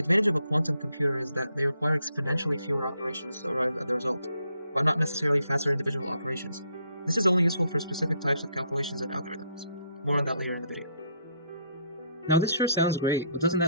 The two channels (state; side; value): inverted; both; correlation -0.71